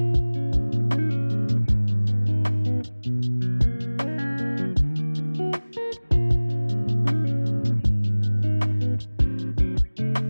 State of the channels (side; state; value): both; inverted; correlation -1.00